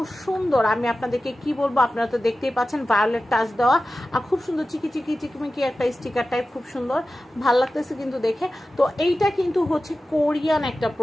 সুন্দর, আমি আপনাদেরকে কি বলবো। আপনারা তো দেখতেই পাচ্ছেন ভায়োলেট টাচ দেওয়া, আর খুব সুন্দর চিকিমিকি একটা স্টিকার টাইপ, খুব সুন্দর, ভাল লাগতেছে কিন্তু দেখে। তো এইটা কিন্তু হচ্ছে কোরিয়ান একটা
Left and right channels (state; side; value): normal; both; correlation 0.94